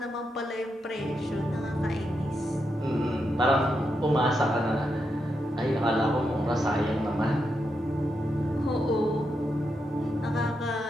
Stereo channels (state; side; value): normal; both; correlation 0.84